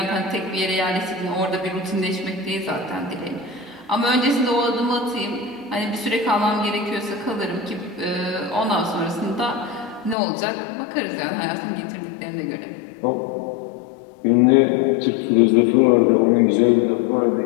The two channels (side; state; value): right; drops out; at 10.2 s